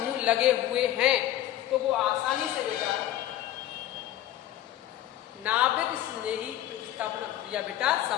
लगे हुए हैं तो वो आसानी से बेटा नाभिक स्नेही प्रतिस्थापन क्रिया बेटा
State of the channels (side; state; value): right; quieter; 13.1 dB